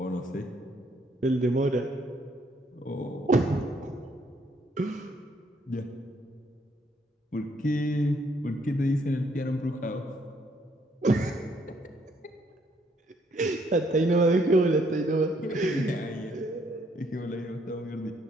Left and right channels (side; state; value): both; normal; correlation 0.69